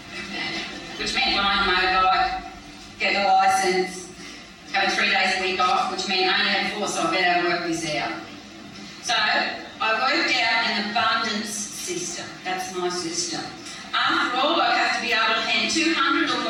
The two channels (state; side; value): identical; both; correlation 1.00